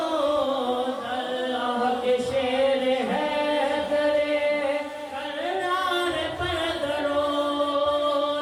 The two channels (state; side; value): identical; both; correlation 1.00